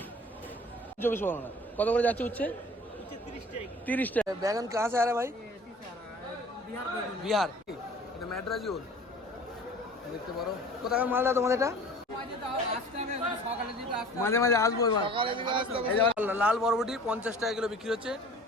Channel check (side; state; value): both; normal; correlation 0.45